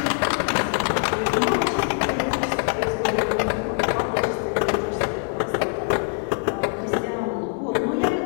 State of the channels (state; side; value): silent; right; 56 dB below the other